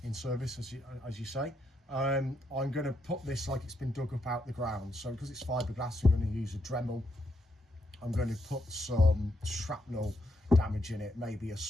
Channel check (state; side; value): normal; both; correlation 0.78